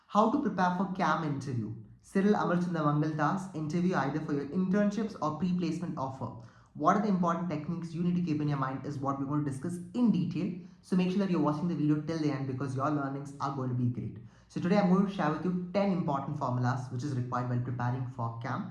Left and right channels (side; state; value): both; identical; correlation 1.00